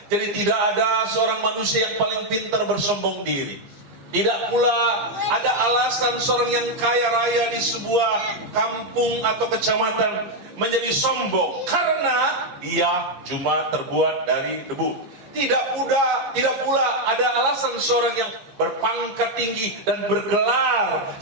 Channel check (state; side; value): late; left; 15 ms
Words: Jadi tidak ada seorang manusia yang paling pintar bersombong diri. Tidak pula ada alasan seorang yang kaya raya di sebuah kampung atau kecamatan menjadi sombong karena dia cuma terbuat dari debu. Tidak pula ada alasan seorang yang berpangkat tinggi dan bergelar